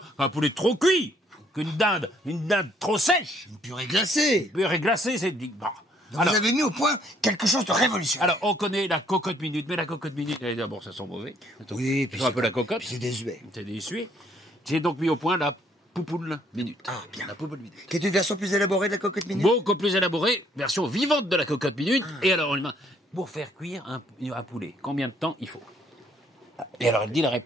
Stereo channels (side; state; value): both; normal; correlation 0.65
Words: poulet trop cuit, qu'une dinde trop sèche. Une purée glacée. Une purée glacée, c'est... Bon. Donc vous avez mis au point quelque chose de révolutionnaire. Alors, on connaît la cocotte minute, mais la cocotte minute, d'abord, ça sent mauvais. Oui, puis un peu la cocotte. C'est désuet. C'est désuet. J'ai donc mis au point la Poupoule Minute. Ah, bien. La Poupoule Minute. Qui est une version plus élaborée de la cocotte minute? Beaucoup plus élaborée, version vivante de la cocotte minute. Et alors, pour faire cuire un poulet, combien de temps il faut? Et alors, elle dit la